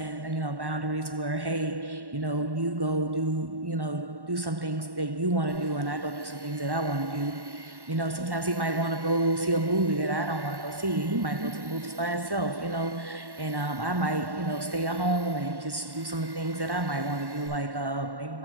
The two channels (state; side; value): late; left; 1.1 ms